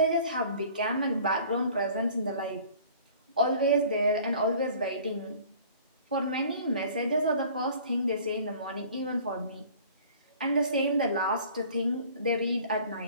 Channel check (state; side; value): inverted; both; correlation -0.49